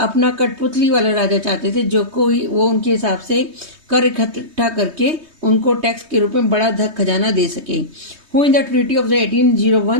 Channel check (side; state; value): left; late; 3.2 ms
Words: कठपुतली वाला राजा चाहते थे जो कोई वो उनके हिसाब से कर इकट्ठा करके उनको टैक्स के रूप में बड़ा धन खजाना दे सके. Who in the treaty of the